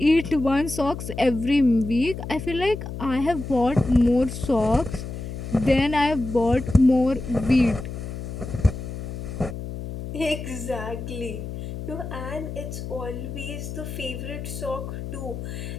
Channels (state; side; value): noise; left; hum, 8 dB below the sound